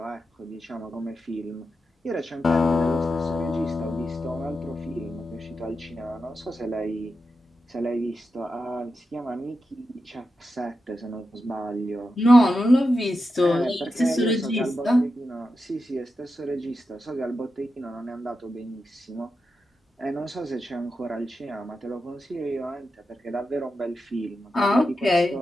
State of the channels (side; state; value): both; normal; correlation 0.89